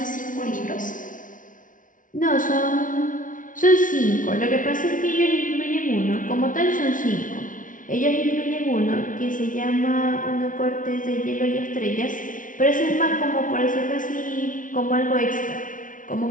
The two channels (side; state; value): right; late; 0.38 ms